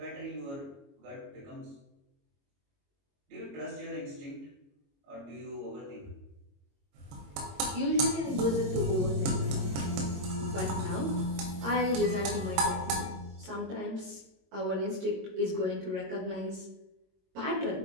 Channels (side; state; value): left; late; 22 ms